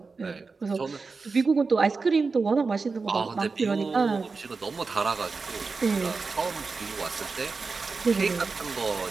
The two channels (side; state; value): left; quieter; 4.4 dB